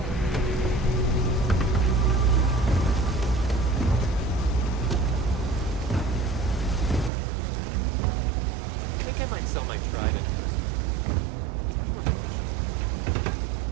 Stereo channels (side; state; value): left; drops out; at 7.1 s